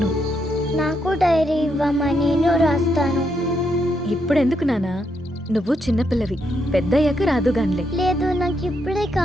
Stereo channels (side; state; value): both; normal; correlation 0.78